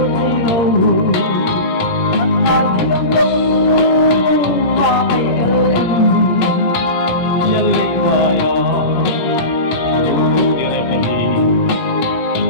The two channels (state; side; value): late; right; 17 ms